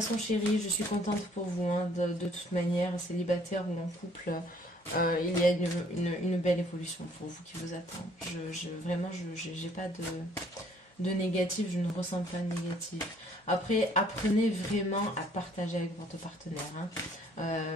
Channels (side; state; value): both; normal; correlation 0.61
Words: chéris, je suis contente pour vous, hein, de toute manière, célibataire ou en couple, il y a une belle évolution pour vous qui vous attend. Vraiment, je n'ai pas de négatif, je ne ressens pas de négatif. Après, apprenez vraiment à partager avec votre partenaire. Hein.